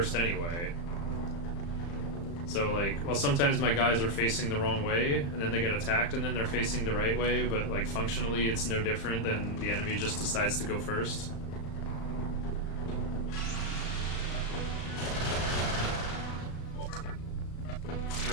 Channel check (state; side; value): late; right; 35 ms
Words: anyway. So like, well, sometimes my guys are facing the wrong way, and then they get attacked, and then they're facing the right way, but like functionally it's no different than the enemy just decides to go first.